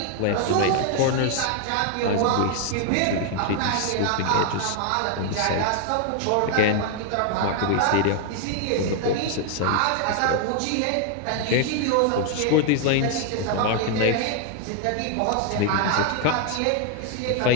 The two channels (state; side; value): different; both; correlation 0.00